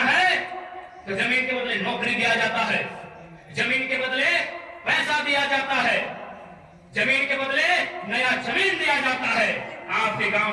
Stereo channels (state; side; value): identical; both; correlation 1.00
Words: तो जमीन के बदले नौकरी दिया जाता है, जमीन के बदले पैसा दिया जाता है, जमीन के बदले नया जमीन दिया जाता है। आपके